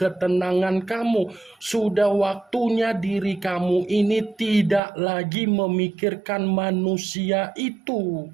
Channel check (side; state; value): left; drops out; at 4.8 s